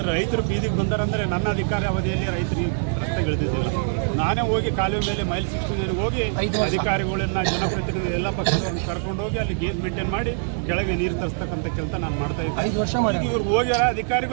ರೈತರು ಬೀದಿಗೆ ಬಂದಾರಂದ್ರೆ ನನ್ನ ಅಧಿಕಾರಿ ಅವಧಿಯಲ್ಲಿ ರೈತರಿಗೆ ರಸ್ತೆಗಳಿದ್ದಿಲ್ಲ. ನಾನೇ ಹೋಗಿ ಕಾಲುವೆ ಮೇಲೆ ಮೈಲ್ 69 ಹೋಗಿ ಅಧಿಕಾರಿಗಳನ್ನ, ಜನಪ್ರತಿನಿಧಿ ಎಲ್ಲ ಪಕ್ಷದವ್ರನ್ನ ಕರ್ಕೊಂಡು ಹೋಗಿ ಅಲ್ಲಿ ಗೇಜ್ ಮೇಂಟೈನ್ ಮಾಡಿ ಕೆಳಗೆ ನೀರು ತರಿಸ್ತಕ್ಕಂಥ ಕೆಲಸ ನಾನು ಮಾಡ್ತಾ ಇದ್ದೆ. ಇವ್ರು ಹೋಗ್ಯಾರ,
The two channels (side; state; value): left; silent; digital silence